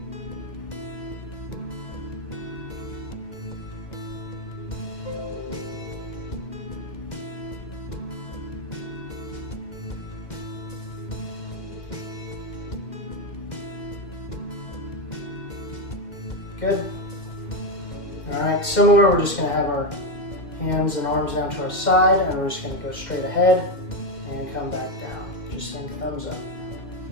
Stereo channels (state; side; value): late; right; 2.1 ms